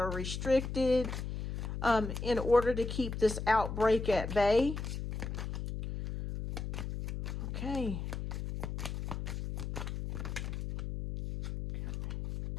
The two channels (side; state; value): left; noise; hum, 5 dB below the sound